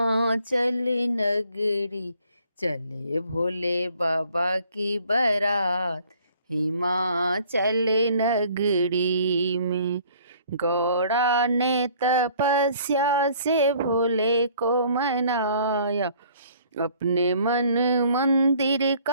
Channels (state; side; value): inverted; both; correlation -0.57